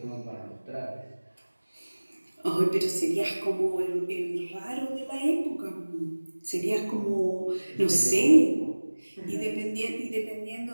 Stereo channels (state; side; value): inverted; both; correlation -1.00